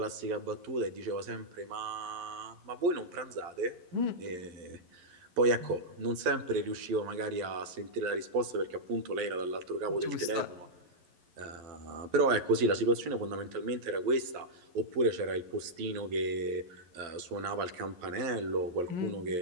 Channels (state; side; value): late; left; 11 ms